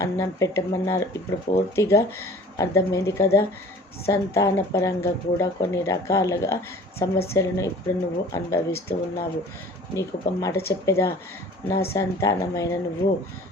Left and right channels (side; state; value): both; normal; correlation 0.46